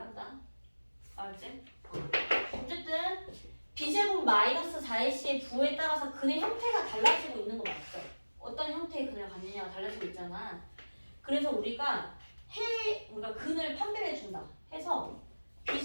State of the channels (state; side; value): inverted; both; correlation -1.00